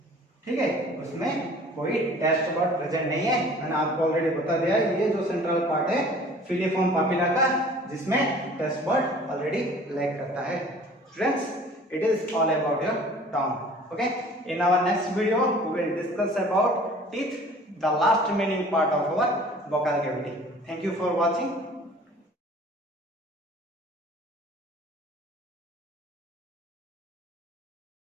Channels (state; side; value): normal; both; correlation 0.48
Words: ठीक है, उसमें कोई टेस्ट बर्ड प्रेजेंट नहीं है, मैंने आपको ऑलरेडी बता दिया। ये जो सेंट्रल पार्ट है फिलिफॉर्म पापिला का, जिसमें टेस्ट बर्ड ऑलरेडी लैक करता है। Students, it is all about your tongue, okay. In our next video we will discuss about teeth, the last remaining part of our vocal cavity. Thank you for watching.